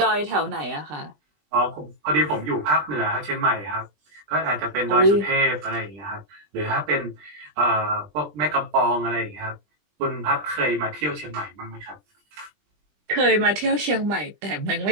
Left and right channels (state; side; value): late; left; 20 ms